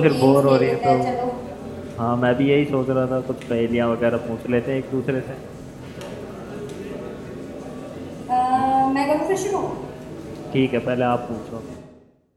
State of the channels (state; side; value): identical; both; correlation 1.00